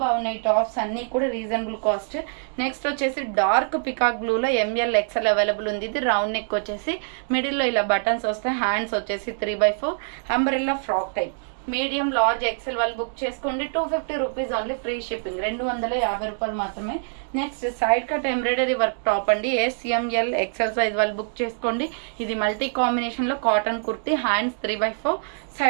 బాగున్నాయి టాప్స్ అన్ని కూడా రీజనబుల్ కాస్ట్. నెక్స్ట్ వచ్చేసి డార్క్ పికాక్ బ్లూ లో ML XL అవైలబుల్ ఉంది. ఇది రౌండ్ నెక్ వచ్చేసి మిడిల్ లో ఇలా బటన్స్ వస్తాయి. హ్యాండ్స్ వచ్చేసి 3/4 umbrella frock type. Medium large XL వాళ్ళు బుక్ చేసుకోండి. 250 రూపీస్ ఓన్లీ, ఫ్రీ షిప్పింగ్. 250 రూపాయలు మాత్రమే. Next side cut embroidery work top అండి. SML XL సైజ్ వాళ్ళు బుక్ చేసుకోండి. ఇది మల్టీ కాంబినేషన్ లో cotton kurti. Hands 3/4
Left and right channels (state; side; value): silent; left; digital silence